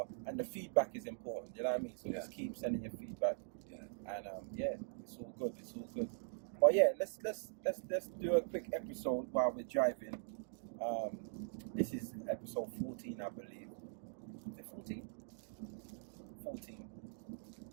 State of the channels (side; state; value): left; silent; digital silence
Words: And the feedback is important. You know what I mean? So just keep sending your feedback. Yeah. And yeah, it's all good. But yeah, let's do a quick episode while we're driving. This is episode 14, I believe. Is it 14? 14.